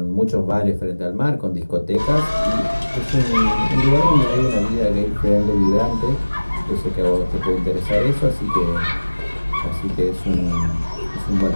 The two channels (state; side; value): inverted; both; correlation -1.00